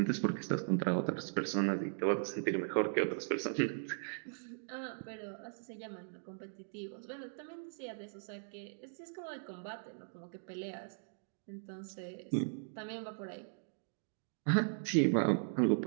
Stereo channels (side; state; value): left; silent; digital silence